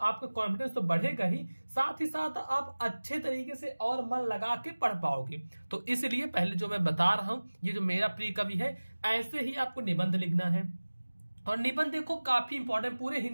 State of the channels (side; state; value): both; inverted; correlation -1.00